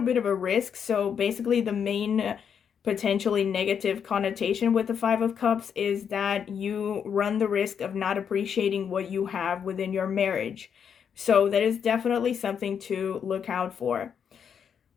bit of a risk. So basically the main potentially negative connotation with the Five of Cups is that you run the risk of not appreciating what you have within your marriage. So that is definitely something to look out for.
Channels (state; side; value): quieter; right; 7.5 dB